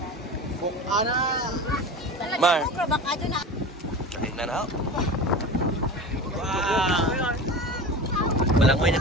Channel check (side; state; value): both; normal; correlation 0.31